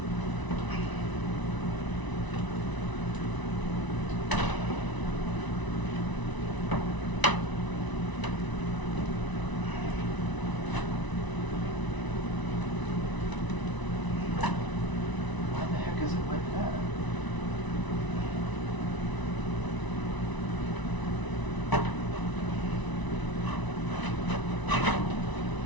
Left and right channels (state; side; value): late; right; 1.0 ms